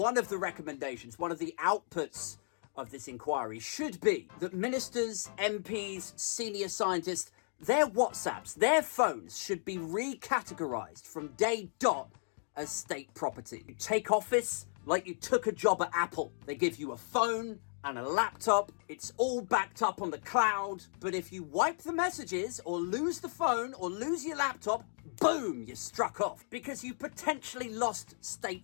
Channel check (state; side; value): silent; right; digital silence